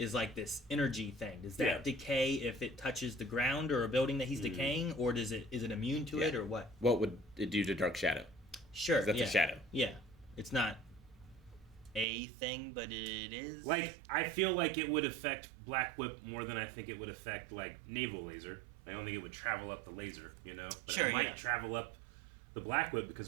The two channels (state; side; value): drops out; left; at 12.1 s